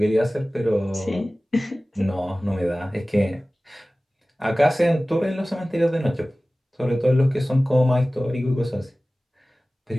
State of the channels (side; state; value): both; normal; correlation 0.97